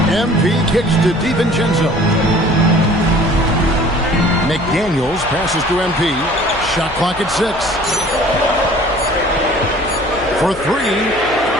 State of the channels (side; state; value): left; noise; hum, 16 dB below the sound